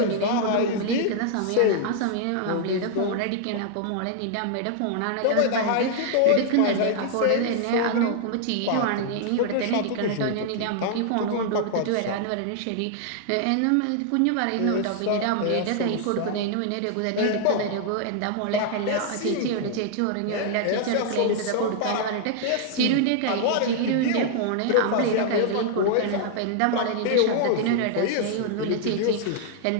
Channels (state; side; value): different; both; correlation -0.01